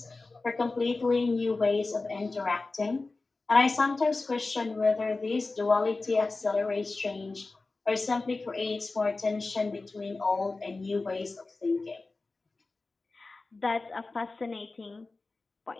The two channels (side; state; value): right; quieter; 3.5 dB